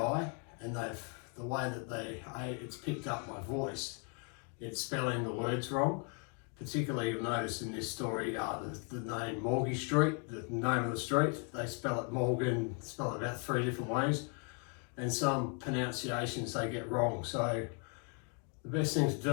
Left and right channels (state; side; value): quieter; right; 39.6 dB